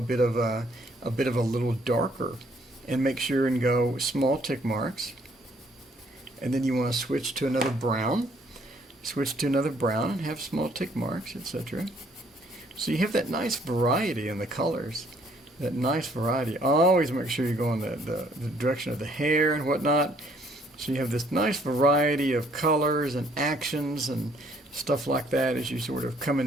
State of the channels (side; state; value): both; normal; correlation 0.64